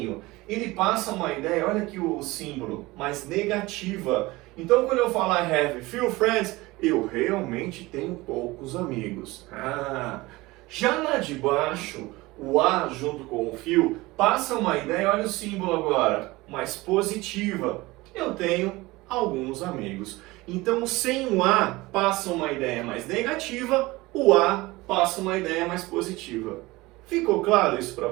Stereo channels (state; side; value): quieter; left; 20.8 dB